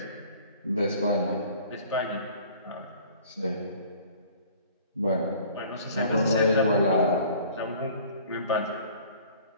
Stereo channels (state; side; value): inverted; both; correlation -0.50